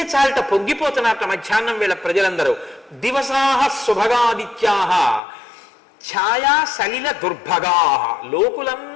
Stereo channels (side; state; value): right; drops out; at 5.2 s